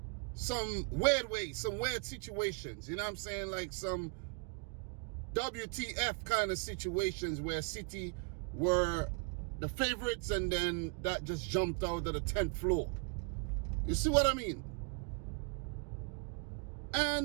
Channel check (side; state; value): left; quieter; 33.2 dB